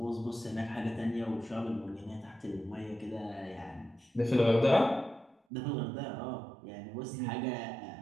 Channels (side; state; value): left; drops out; at 5.4 s